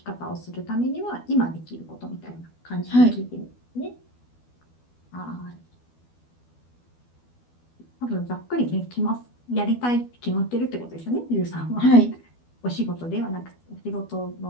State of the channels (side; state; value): right; late; 12 ms